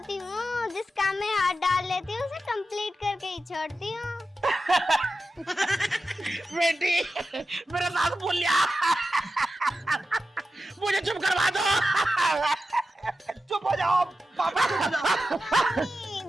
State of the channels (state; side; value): normal; both; correlation 0.92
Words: हूँ। जिस काम में हाथ डाल लेती हूँ उसे कंप्लीट करके ही छोड़ती हूँ। बेटी, मेरा साथ बोल लिया। मुझे चुप करवा दो। चुप हो जाओ पापा, चुप हो जाओ।